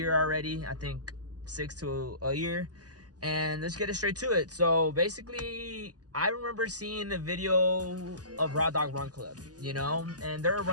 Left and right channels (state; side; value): late; left; 0.68 ms